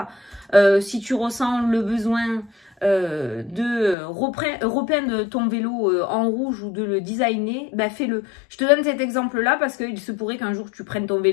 Si tu ressens le besoin de repeindre ton vélo en rouge ou de le designer, ben fais-le. Je te donne cet exemple-là parce qu'il se pourrait qu'un jour tu prennes ton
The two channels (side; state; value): right; drops out; at 4.0 s